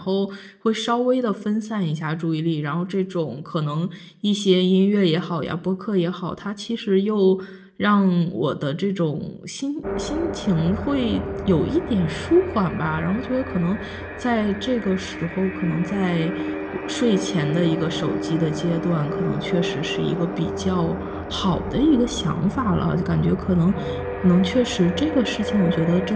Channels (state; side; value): identical; both; correlation 1.00